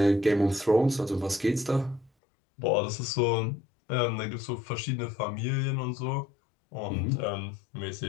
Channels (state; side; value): drops out; right; at 2.1 s